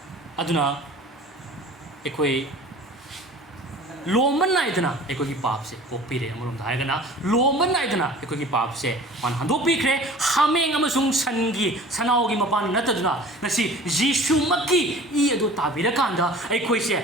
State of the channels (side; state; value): both; normal; correlation 0.44